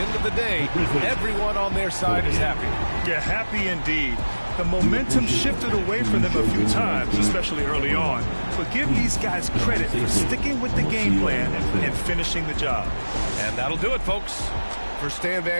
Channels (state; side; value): inverted; both; correlation -1.00